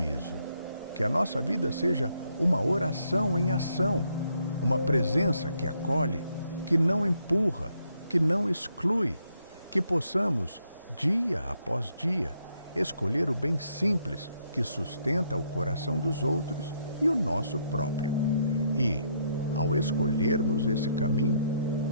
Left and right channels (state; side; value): inverted; both; correlation -0.73